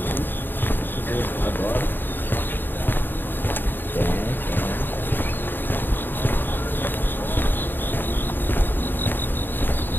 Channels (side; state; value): right; late; 0.094 ms